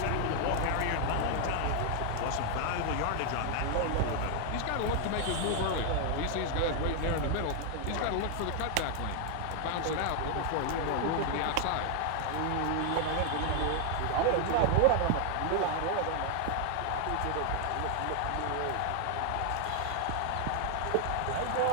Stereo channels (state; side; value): different; both; correlation 0.00